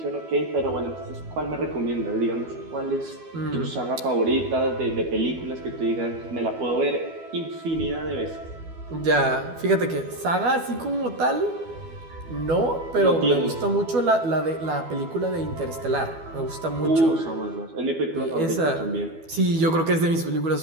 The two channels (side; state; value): left; late; 12 ms